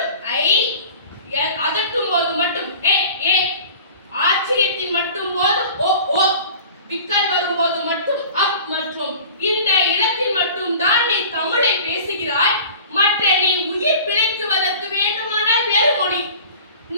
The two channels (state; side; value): inverted; both; correlation -0.42